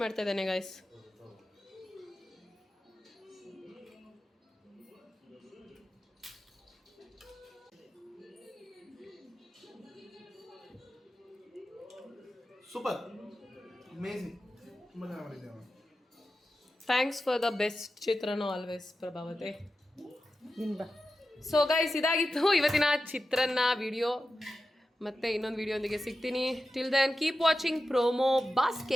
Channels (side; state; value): both; normal; correlation 0.92